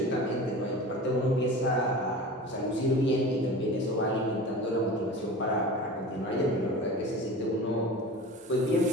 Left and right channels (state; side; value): normal; both; correlation 0.35